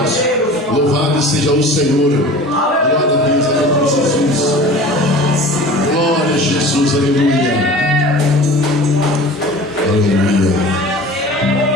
Louvado seja o Senhor. Glória a Deus, aleluia, Jesus. Glória a Jesus, aleluia. Aleluia.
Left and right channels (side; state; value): both; normal; correlation 0.40